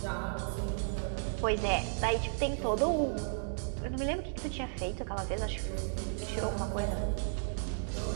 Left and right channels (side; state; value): left; silent; digital silence